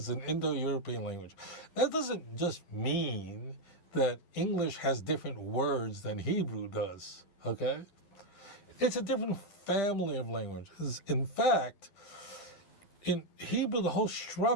an Indo-European language. That doesn't just mean that English has different words than Hebrew does, okay? It's a different family of languages. In fact, in Hebrew, the whole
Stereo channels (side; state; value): right; late; 12 ms